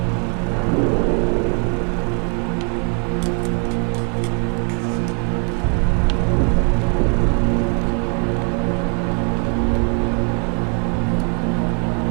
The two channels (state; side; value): quieter; left; 38.1 dB